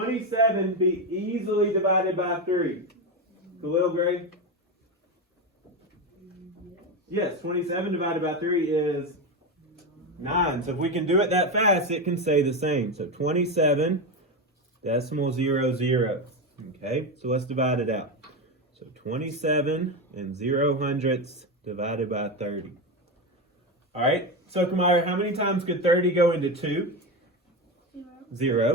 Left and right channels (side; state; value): both; normal; correlation 0.15